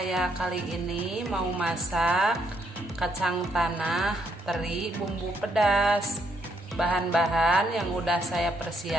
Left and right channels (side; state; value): both; normal; correlation 0.74